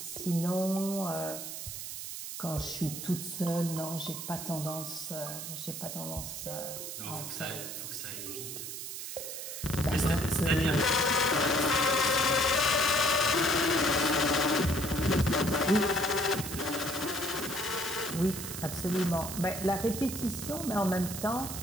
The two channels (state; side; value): noise; right; hiss, 7 dB below the sound